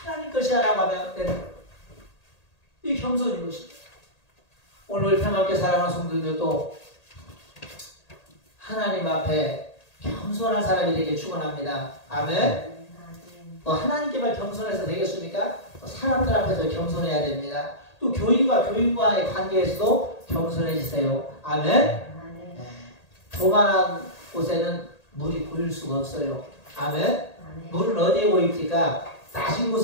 것이야 라고 하면 되는 거예요. 이 겸손인 것입니다. 오늘 평화롭게 살아가는 성도들도 하나님 앞에 겸손한 사람이 되길 축원합니다. 아멘. 하나님께만 겸손해서 되겠습니까? 사람들 앞에서 겸손해야 됩니다. 또 교인과 교인과의 관계에서도 겸손해지세요. 아멘. 네. 조만한 곳에는 물이 보일 수가 없어요. 아멘. 물은 어디에 보입니까? 낮은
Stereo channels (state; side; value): late; right; 1.8 ms